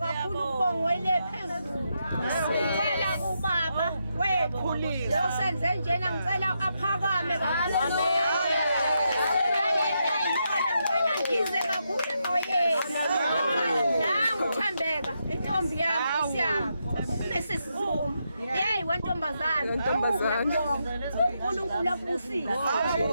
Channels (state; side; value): inverted; both; correlation -0.82